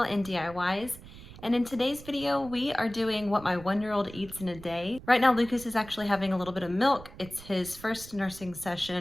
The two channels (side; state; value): right; noise; rumble, 17 dB below the sound